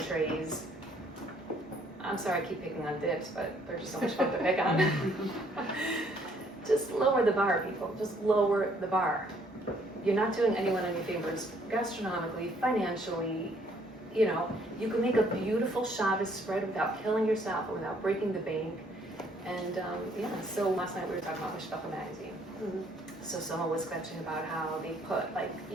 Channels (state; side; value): normal; both; correlation 0.65